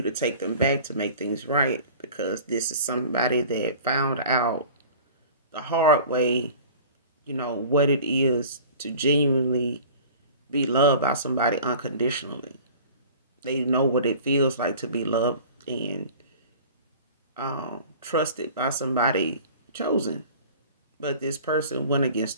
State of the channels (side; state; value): both; inverted; correlation -0.43